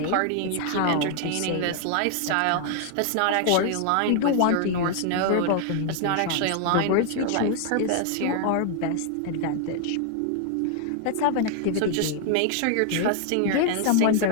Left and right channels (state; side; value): different; both; correlation 0.00